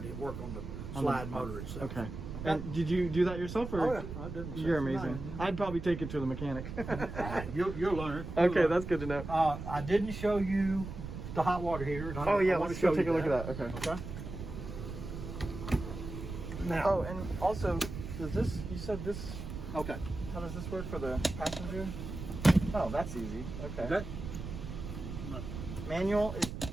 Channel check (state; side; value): noise; right; rumble, 8 dB below the sound